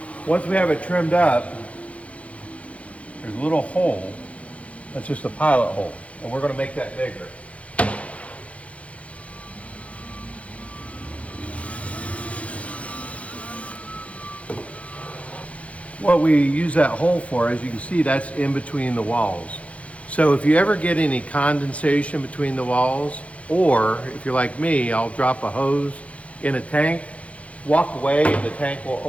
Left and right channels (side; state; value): right; late; 0.064 ms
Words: Once we have it trimmed up, there's a little hole. That's just a pilot hole, and we're going to make that bigger. What we use that hole for, as you can see, that's in between the walls. So if you ever get any condensation between the walls, or if you're like me, I'll drop a hose in a tank, walk away, and the tank will